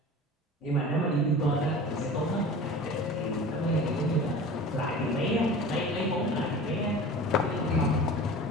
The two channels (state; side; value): normal; both; correlation 0.38